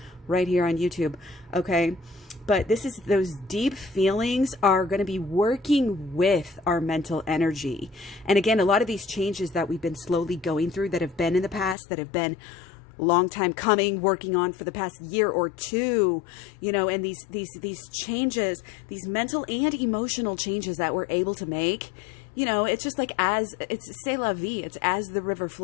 right here on YouTube. Okay. But those deep feelings are going to be working with our mental energy. And again, a lot of these changes that we've been slowly going through, that have been in the past, that have been long time coming, working on for the past year or two, and these changes, these mental and emotional changes that we're able to make, it's just like, it's c'est la vie. It's as the river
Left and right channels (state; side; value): drops out; right; at 11.8 s